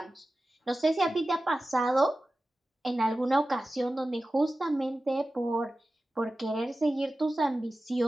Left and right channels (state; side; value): normal; both; correlation 0.95